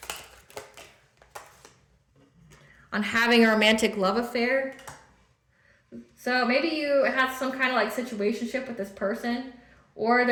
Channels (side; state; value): both; identical; correlation 1.00